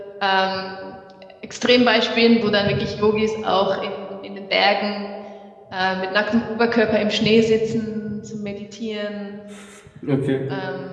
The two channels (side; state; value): both; identical; correlation 1.00